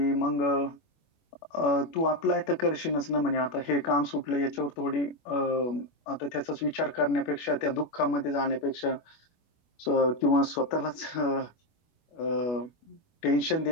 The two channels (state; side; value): late; right; 25 ms